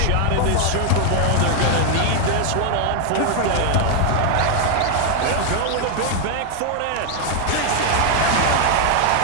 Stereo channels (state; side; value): different; both; correlation 0.00